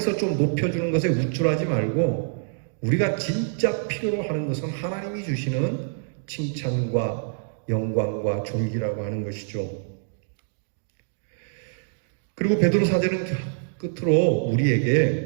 좀 높여주는 것에 우쭐하지 말고 우리가 진짜 필요로 하는 것은 하나님이 주시는 칭찬과 영광과 존귀라고 하는 것이죠. 그리고 베드로 사도는 끝으로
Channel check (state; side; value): silent; left; digital silence